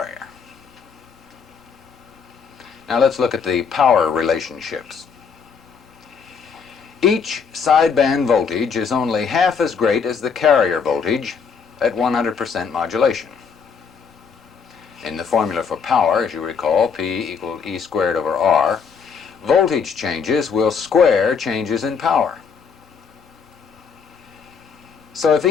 Now let's look at the power relationships. Each sideband voltage is only half as great as the carrier voltage at 100% modulation. In the formula for power, as you recall, P equaled E squared over R, voltage changes will square changes in power. So if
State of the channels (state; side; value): quieter; right; 6.0 dB